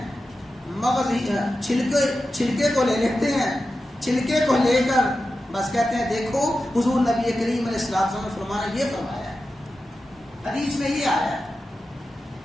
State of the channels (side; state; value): both; normal; correlation 0.92